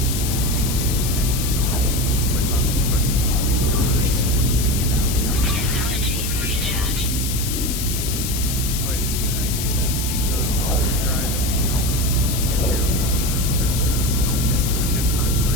click on the equipment to recharge. You can get out the Technology recharge. Always a good idea to keep the pulse drive at least. Make sure your launch thrusters are okay. The ship's not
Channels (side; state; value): left; noise; hiss, 4 dB below the sound